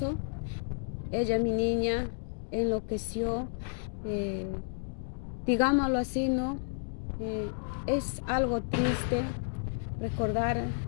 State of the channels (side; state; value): right; silent; digital silence